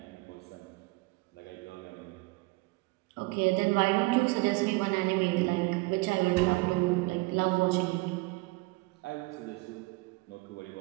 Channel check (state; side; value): quieter; left; 24.8 dB